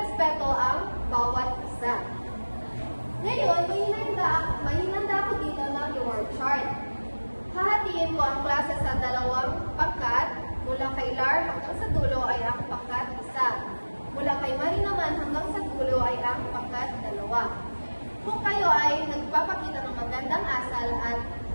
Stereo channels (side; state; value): both; inverted; correlation -1.00